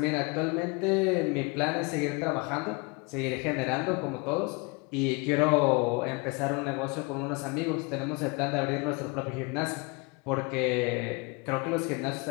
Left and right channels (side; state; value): right; quieter; 29.7 dB